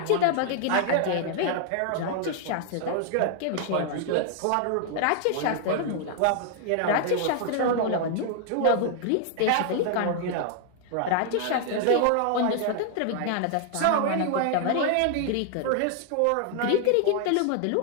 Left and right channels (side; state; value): both; different; correlation 0.00